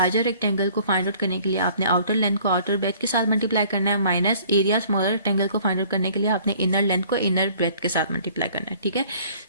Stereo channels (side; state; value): both; inverted; correlation -0.55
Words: rectangle को फाइंड आउट करने के लिए आपने आउटर लेंथ को आउटर ब्रेथ के साथ मल्टीप्लाई करना है माइनस एरिया स्मॉलर रेक्टेंगल को फाइंड आउट करने के लिए आपने इनर लेंथ को इनर ब्रेथ के साथ मल्टीप्लाई करना है. ठीक है,